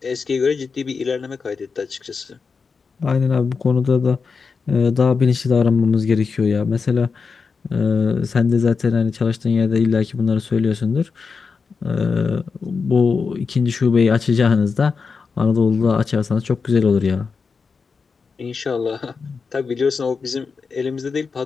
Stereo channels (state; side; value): quieter; right; 5.1 dB